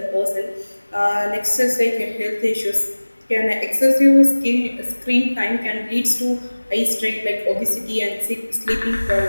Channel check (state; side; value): inverted; both; correlation -1.00